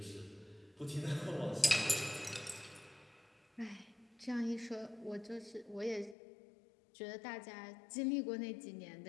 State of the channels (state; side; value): drops out; right; at 6.2 s